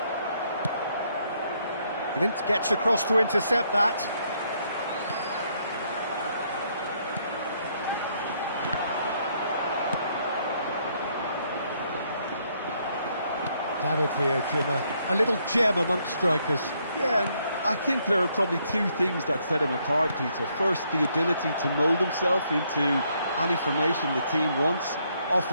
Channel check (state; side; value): inverted; both; correlation -0.72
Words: Clint gets across to intercept that. David Villa, a little gem amongst strikers. Yeah, and I think there are probably two things that set him apart, Peter. First, the ability to mould himself into any formation the team wants,